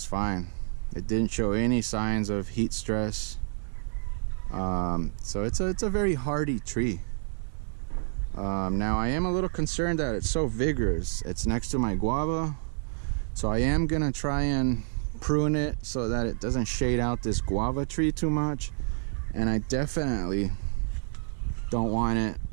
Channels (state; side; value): silent; left; digital silence